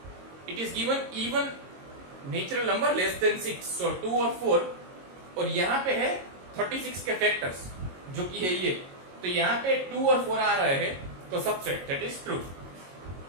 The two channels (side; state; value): left; late; 22 ms